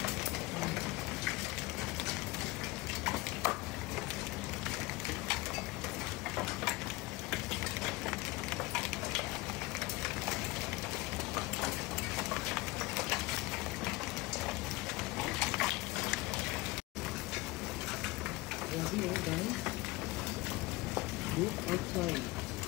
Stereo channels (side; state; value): right; quieter; 21.2 dB